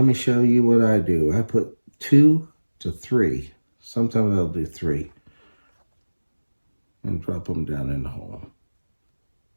me show you what I do. I put 2 to 3. Sometimes I'll do 3. And drop them down in the hole.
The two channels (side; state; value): both; inverted; correlation -1.00